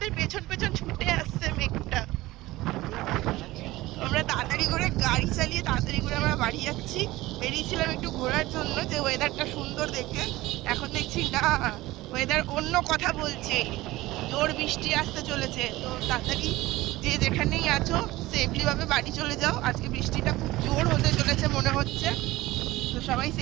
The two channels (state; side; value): quieter; left; 18.3 dB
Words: পেছন পেছন ছুটে আসছে মেঘটা। আমরা তাড়াতাড়ি করে গাড়ি চালিয়ে তাড়াতাড়ি করে আমরা বাড়ি যাচ্ছি। বেরিয়েছিলাম একটু ঘোরার জন্য, যে ওয়েদারটা সুন্দর দেখে। এখন দেখছি না, ওয়েদার অন্য কথা বলছে, জোর বৃষ্টি আসতে চলেছে। তো তাড়াতাড়ি যে যেখানেই আছো সেফলি ভাবে বাড়ি চলে যাও। আজকে বৃষ্টিটা খুব জোর হতে চলেছে মনে হচ্ছে। তো সবাই